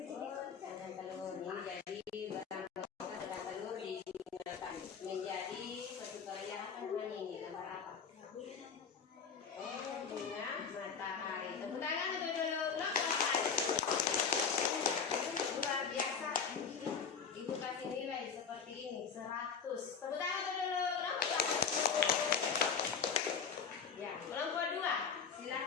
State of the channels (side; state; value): right; quieter; 6.2 dB